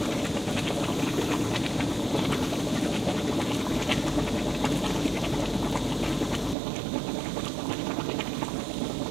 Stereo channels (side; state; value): left; drops out; at 6.6 s